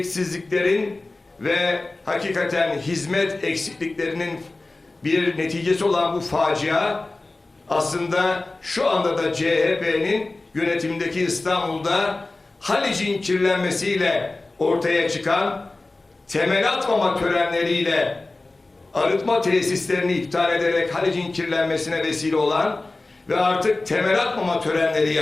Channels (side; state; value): right; quieter; 3.1 dB